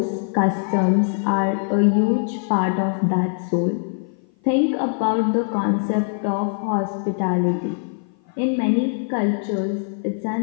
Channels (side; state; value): right; silent; 56 dB below the other